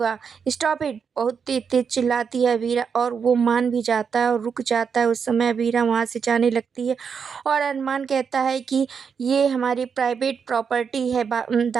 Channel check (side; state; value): left; quieter; 6.4 dB